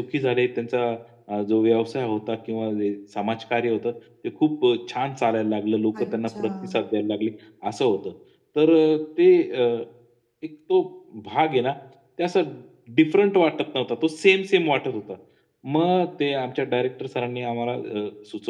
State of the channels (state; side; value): identical; both; correlation 1.00